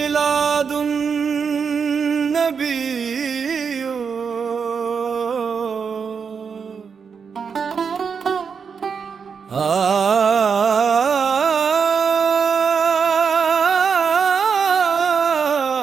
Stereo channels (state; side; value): quieter; left; 6.1 dB